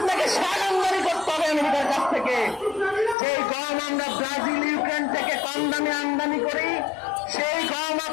সার আমদানি করতে হবে আমেরিকার কাছ থেকে। যেই গম আমরা ব্রাজিল ইউক্রেন থেকে কম দামে আমদানি করি, সেই গম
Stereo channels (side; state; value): right; drops out; at 3.2 s